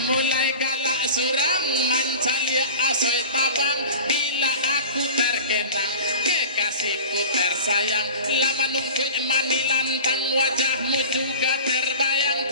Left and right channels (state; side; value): inverted; both; correlation -0.37